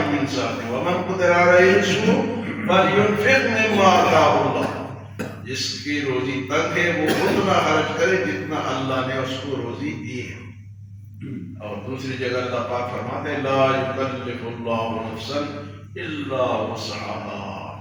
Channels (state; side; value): identical; both; correlation 1.00